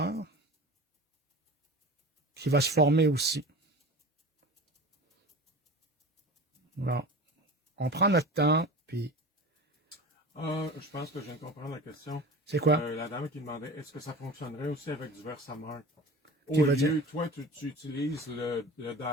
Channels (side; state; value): both; normal; correlation 0.35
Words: qui va se former aussi. Bon. On prend notre temps, puis... Je pense que je viens de comprendre la question. C'est quoi? La dame qui demandait, est-ce que ça fonctionnerait aussi avec du Versamark? Qui Au va lieu, dire? toi, tu utilises le